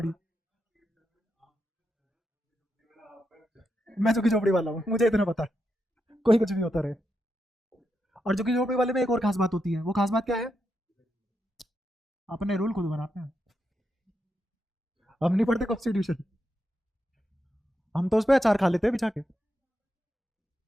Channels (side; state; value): both; normal; correlation 0.84